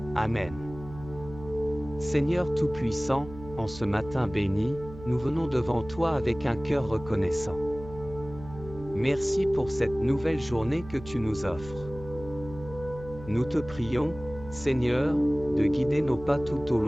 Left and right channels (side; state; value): right; noise; hum, 15 dB below the sound